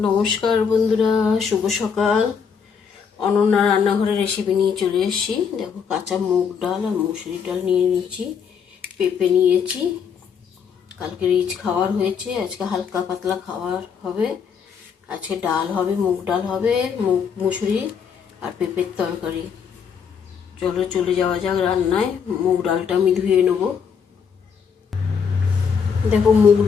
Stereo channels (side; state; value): right; quieter; 6.7 dB